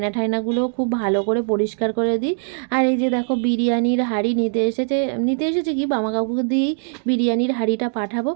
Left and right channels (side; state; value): left; silent; digital silence